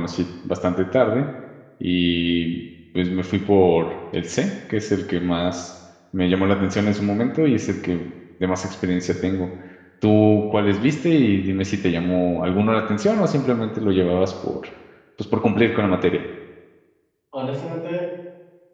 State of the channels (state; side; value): identical; both; correlation 1.00